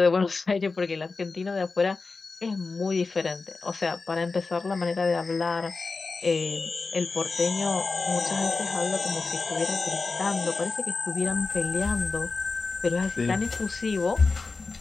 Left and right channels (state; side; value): quieter; right; 4.0 dB